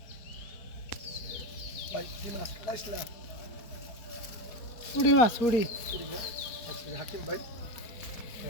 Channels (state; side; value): late; right; 4.6 ms